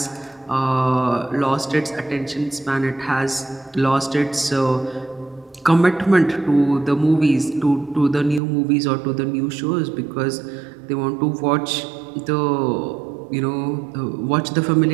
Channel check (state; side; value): drops out; left; at 8.4 s